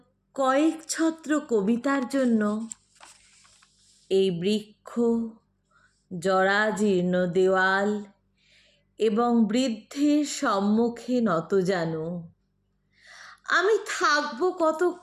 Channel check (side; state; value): both; identical; correlation 1.00